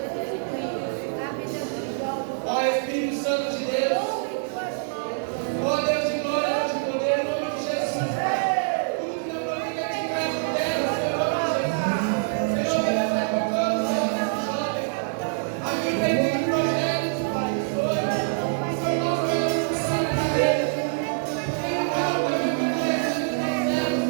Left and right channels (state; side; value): silent; left; 62 dB below the other